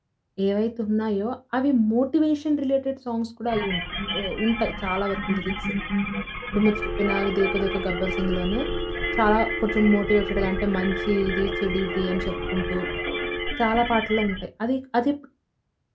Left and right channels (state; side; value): identical; both; correlation 1.00